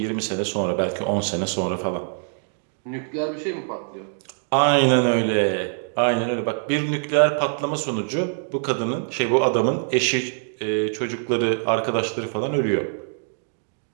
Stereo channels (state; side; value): silent; left; digital silence